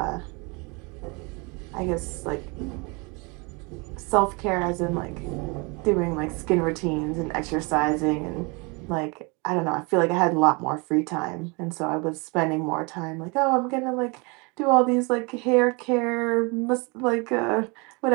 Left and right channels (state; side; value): quieter; left; 29.5 dB